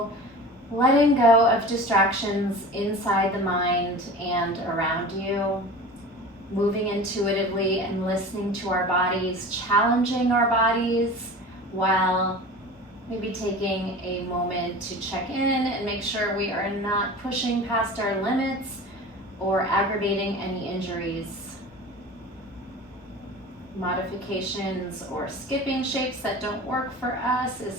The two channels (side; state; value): both; normal; correlation 0.36